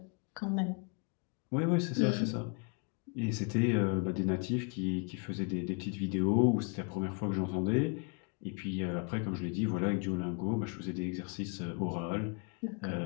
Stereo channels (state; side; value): quieter; right; 34.6 dB